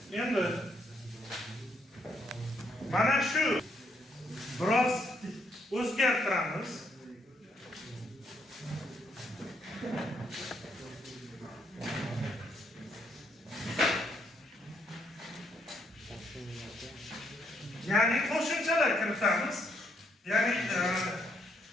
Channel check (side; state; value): both; normal; correlation 0.74